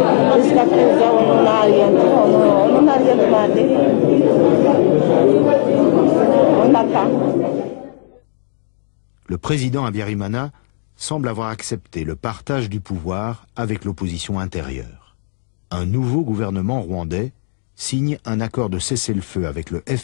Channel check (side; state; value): right; silent; digital silence